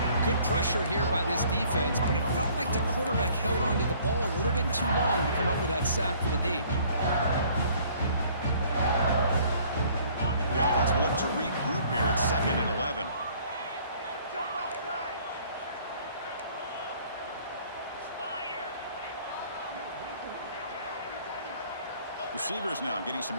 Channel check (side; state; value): both; inverted; correlation -0.57